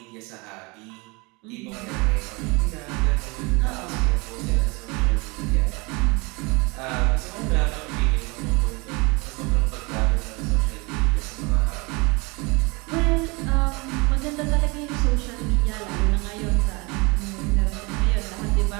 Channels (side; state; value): left; quieter; 27.2 dB